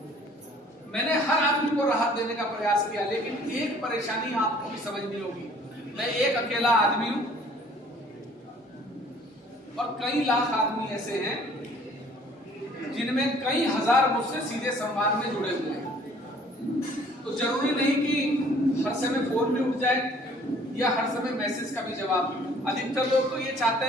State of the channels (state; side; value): normal; both; correlation 0.55